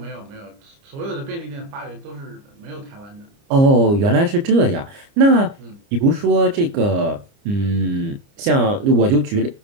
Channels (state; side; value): late; left; 29 ms